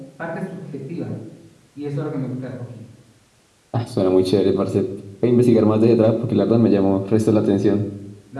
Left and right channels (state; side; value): identical; both; correlation 1.00